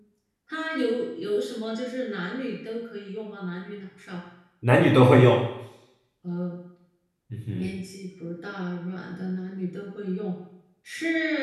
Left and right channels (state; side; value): identical; both; correlation 1.00